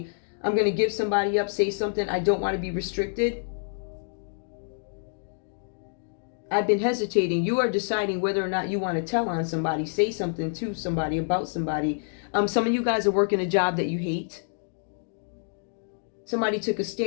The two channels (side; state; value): right; silent; digital silence